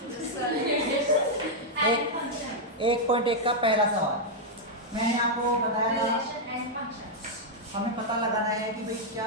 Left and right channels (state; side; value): normal; both; correlation -0.03